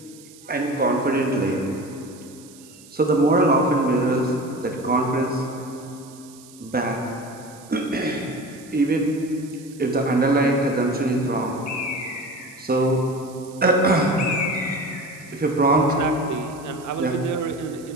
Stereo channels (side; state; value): right; noise; hiss, 22 dB below the sound